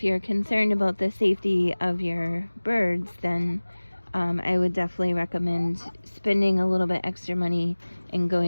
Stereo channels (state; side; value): inverted; both; correlation -1.00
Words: you're concerned about the safety of your birds, then I would definitely recommend spending a little bit extra money and